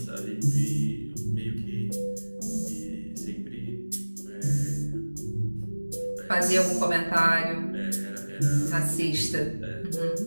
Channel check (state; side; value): inverted; both; correlation -1.00